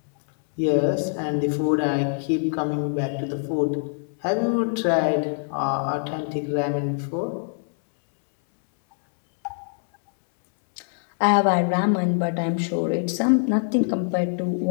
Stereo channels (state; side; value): silent; right; 63 dB below the other